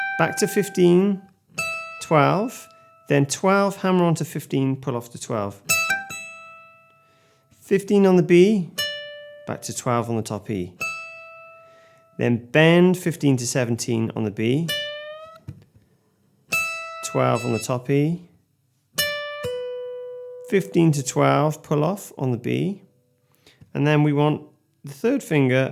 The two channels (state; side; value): identical; both; correlation 1.00